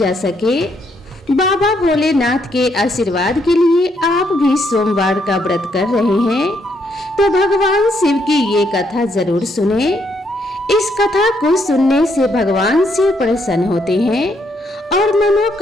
सके। बाबा भोलेनाथ के आशीर्वाद के लिए आप भी सोमवार का व्रत कर रहे हैं तो भगवान शिव की ये कथा जरूर सुने। इस कथा को सुनने से भगवान शिव प्रसन्न होते हैं और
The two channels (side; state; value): both; normal; correlation 0.74